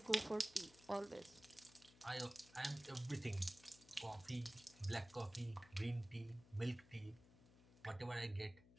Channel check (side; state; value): left; noise; hum, 23 dB below the sound